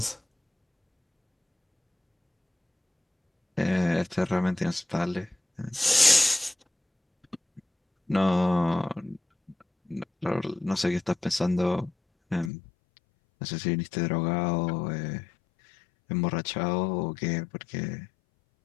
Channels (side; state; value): right; drops out; at 12.5 s